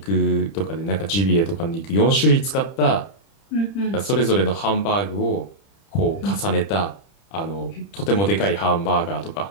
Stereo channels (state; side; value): late; right; 30 ms